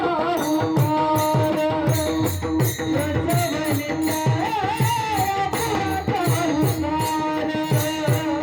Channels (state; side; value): identical; both; correlation 1.00